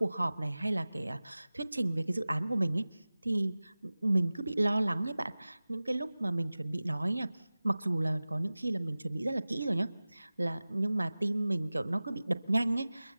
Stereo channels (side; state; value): both; inverted; correlation -0.97